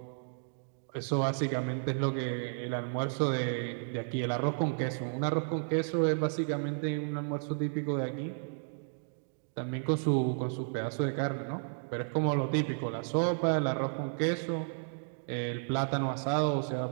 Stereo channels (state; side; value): silent; left; digital silence